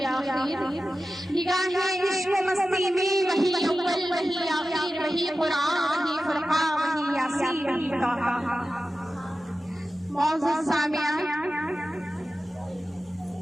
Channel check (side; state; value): both; normal; correlation 0.94